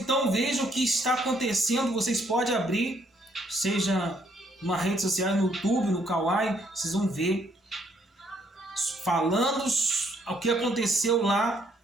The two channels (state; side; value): normal; both; correlation 0.69